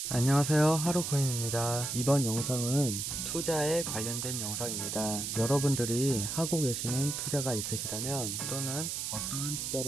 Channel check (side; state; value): right; noise; hiss, 3 dB below the sound